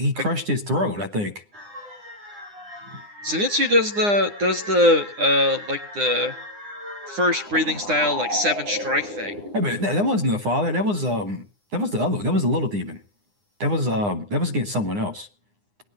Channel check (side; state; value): left; late; 9.8 ms